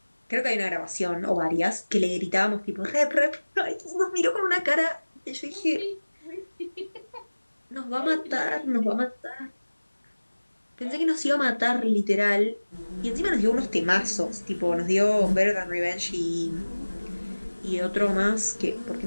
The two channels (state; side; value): inverted; both; correlation -1.00